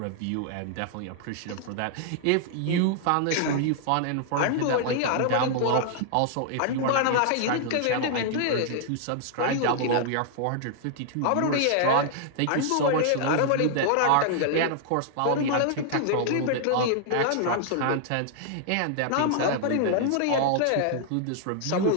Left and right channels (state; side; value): different; both; correlation -0.01